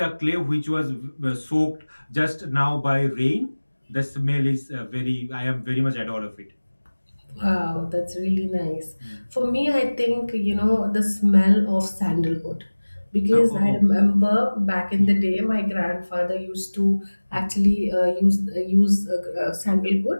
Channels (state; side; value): inverted; both; correlation -1.00